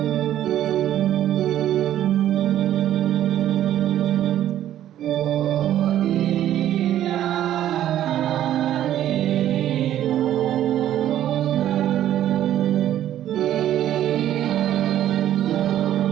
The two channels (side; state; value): left; quieter; 11.9 dB